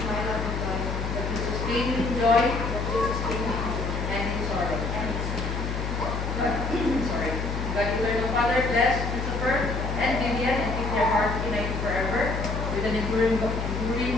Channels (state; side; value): noise; left; hum, 3 dB below the sound